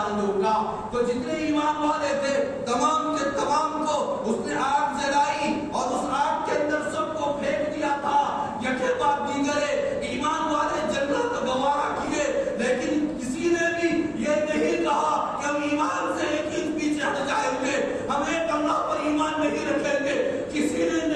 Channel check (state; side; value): identical; both; correlation 1.00